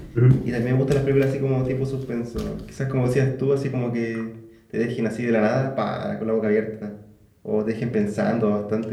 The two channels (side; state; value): both; identical; correlation 1.00